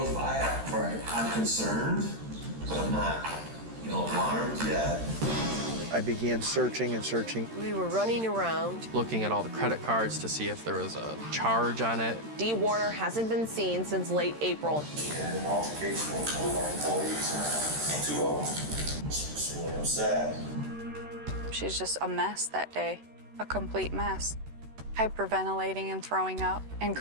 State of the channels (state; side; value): late; left; 13 ms